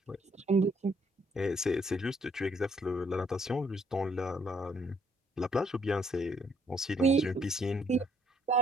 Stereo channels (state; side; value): normal; both; correlation 0.67